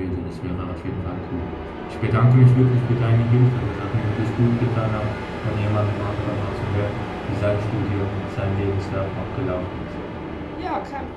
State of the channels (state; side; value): identical; both; correlation 1.00